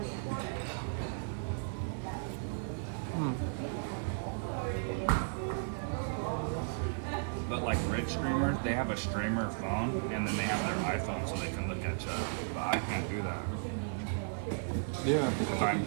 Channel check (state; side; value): silent; left; 54 dB below the other